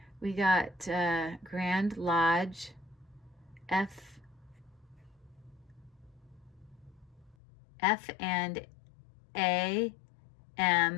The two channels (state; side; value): drops out; right; at 7.4 s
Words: We got Grand Lodge F and